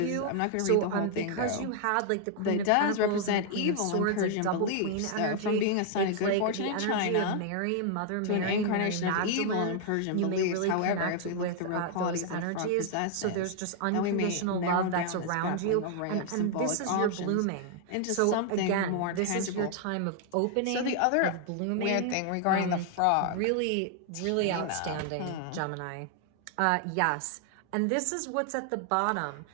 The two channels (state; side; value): different; both; correlation 0.00